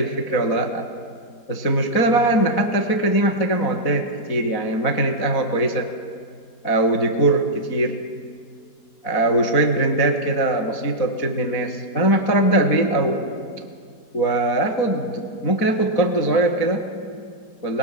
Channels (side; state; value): right; late; 4.1 ms